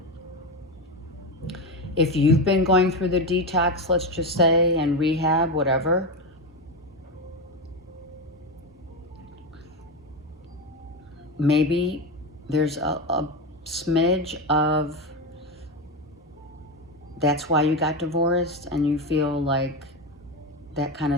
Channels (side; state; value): both; normal; correlation 0.15